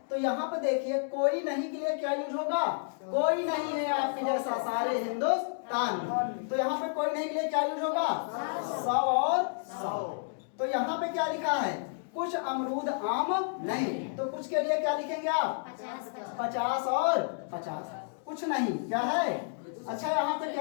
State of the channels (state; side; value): silent; right; digital silence